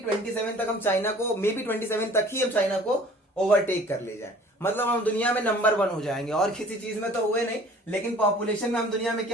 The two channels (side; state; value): both; normal; correlation 0.50